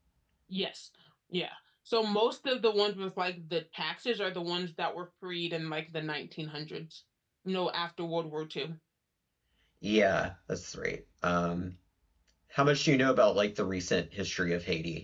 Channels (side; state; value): both; identical; correlation 1.00